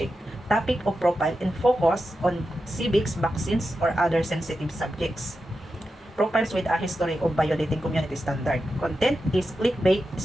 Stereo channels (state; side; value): normal; both; correlation 0.90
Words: Topic of profile and focus on civics, vaccines, or other sensitive subjects. Profiles with a history of violating community standard. Content is clickbait,